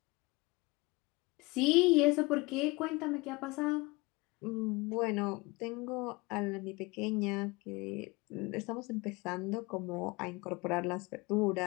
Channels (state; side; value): quieter; right; 24.2 dB